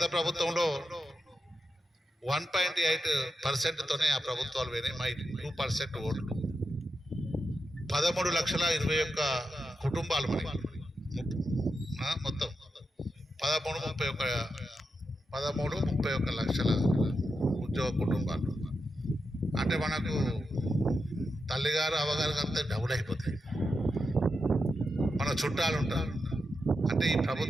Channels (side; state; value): both; normal; correlation 0.87